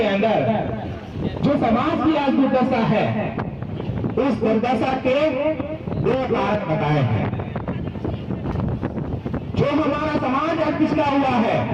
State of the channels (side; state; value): both; identical; correlation 1.00